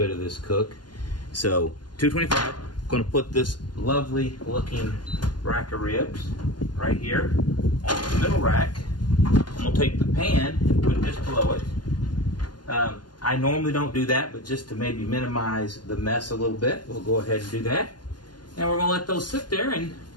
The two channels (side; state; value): right; late; 0.71 ms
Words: of this cook. So 225. Going to put this lovely looking rack of ribs right here on the middle rack. I'm going to take the pan and put it just below it. I normally don't do that, but just to maybe minimize the mess a little bit, we'll go ahead and do that. And we're going to let those sit there and